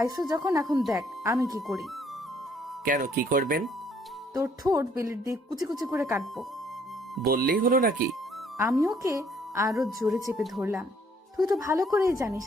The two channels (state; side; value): normal; both; correlation 0.64